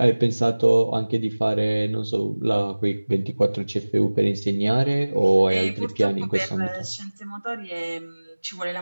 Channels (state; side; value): inverted; both; correlation -1.00